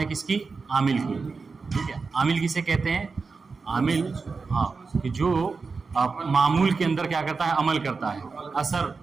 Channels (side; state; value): left; quieter; 4.5 dB